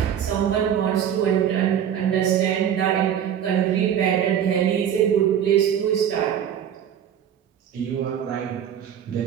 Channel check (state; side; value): quieter; left; 9.3 dB